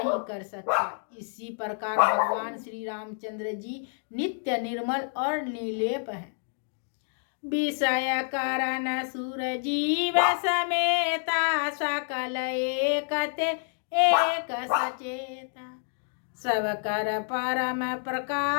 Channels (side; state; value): right; silent; 59 dB below the other